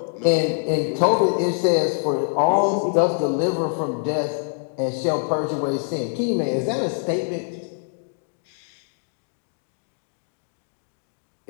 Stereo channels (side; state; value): right; silent; 62 dB below the other